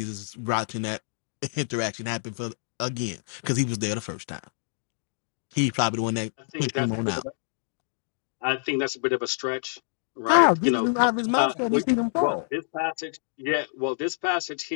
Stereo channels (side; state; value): right; silent; digital silence